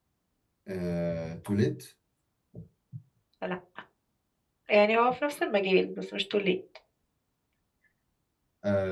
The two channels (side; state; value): both; identical; correlation 1.00